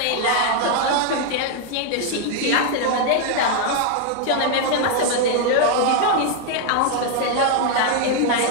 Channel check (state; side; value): different; both; correlation 0.00